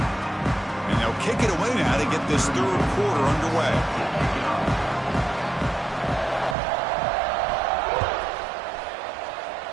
And they'll kick it away now to get this third quarter underway.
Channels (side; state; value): left; drops out; at 6.6 s